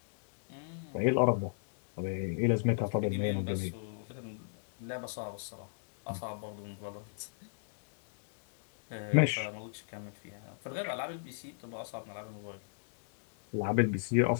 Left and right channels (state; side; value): silent; right; digital silence